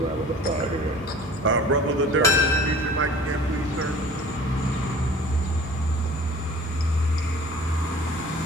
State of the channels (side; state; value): both; normal; correlation 0.45